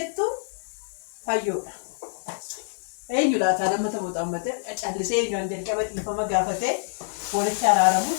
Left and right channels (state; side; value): silent; right; 57 dB below the other